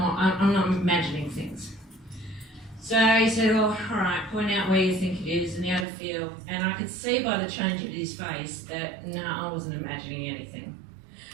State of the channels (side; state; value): left; drops out; at 5.9 s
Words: imagining things. So he said, well, all right, point out where you think it is and how to feel. And I could see by the change of his face that, no, I wasn't imagining anything.